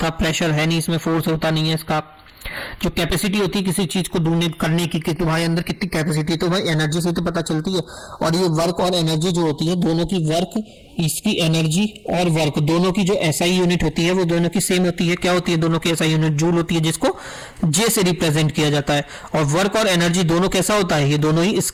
था, प्रेशर है नहीं इसमें, फोर्स होता नहीं है इसका। जो कैपेसिटी होती है किसी चीज को डोनेट करने की कि तुम्हारे अंदर कितनी कैपेसिटी, तो भाई एनर्जी से तो पता चलती है। और ये वर्क और एनर्जी जो होती है दोनों की, वर्क इसकी एनर्जी और वर्क दोनों की जो SI यूनिट होती है वो दोनों की सेम होती है। क्या होती है दोनों की SI यूनिट, जूल होती है, जिसको J से रिप्रेजेंट किया जाता है। और वर्क और एनर्जी दोनों कैसा होता है, ये दोनों ही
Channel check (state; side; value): identical; both; correlation 1.00